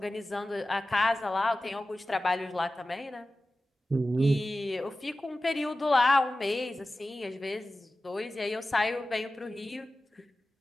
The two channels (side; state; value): both; normal; correlation 0.95